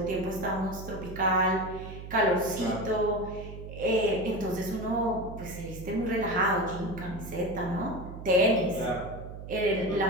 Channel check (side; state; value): right; noise; hum, 11 dB below the sound